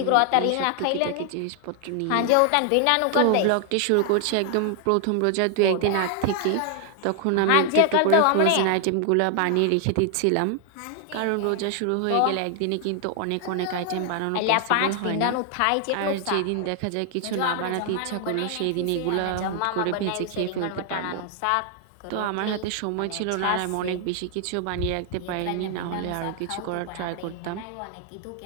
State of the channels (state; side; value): different; both; correlation 0.00